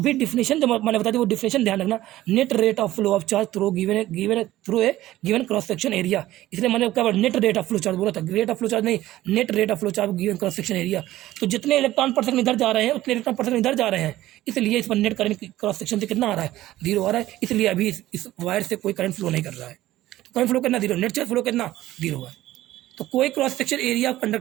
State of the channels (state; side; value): quieter; left; 15.3 dB